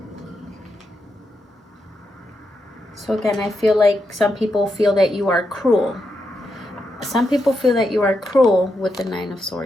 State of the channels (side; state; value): both; normal; correlation 0.84